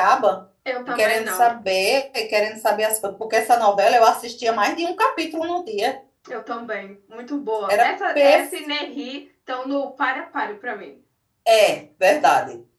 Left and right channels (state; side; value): identical; both; correlation 1.00